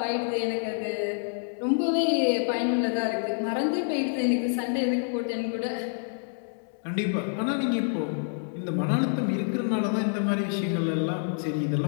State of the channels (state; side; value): silent; right; digital silence